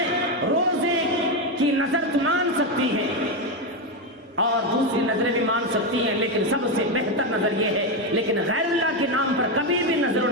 روزے کی نظر تو مان سکتی ہیں اور دوسری نظریں بھی مان سکتی ہیں، لیکن سب سے بہتر نظر یہ ہے، لیکن غیر اللہ کے نام پر کبھی بھی نظر و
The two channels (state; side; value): normal; both; correlation 0.09